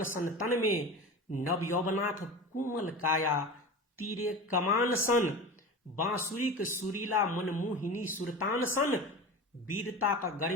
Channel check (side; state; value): both; normal; correlation 0.30